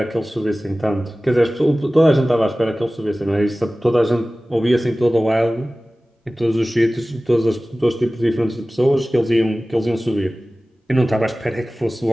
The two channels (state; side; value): normal; both; correlation 0.97